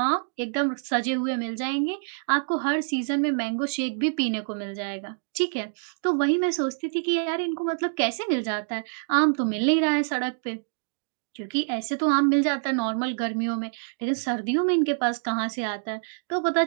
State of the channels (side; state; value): left; silent; digital silence